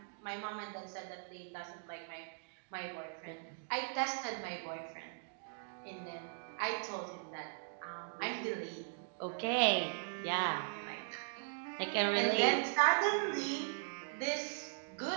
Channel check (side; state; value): left; silent; digital silence